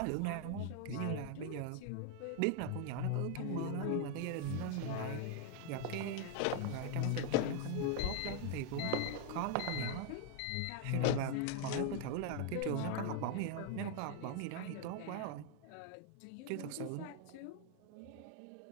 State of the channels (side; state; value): both; different; correlation 0.00